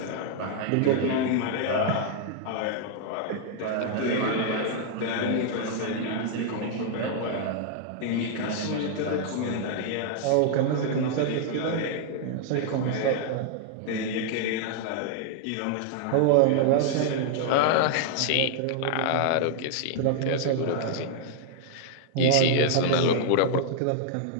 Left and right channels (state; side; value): different; both; correlation 0.00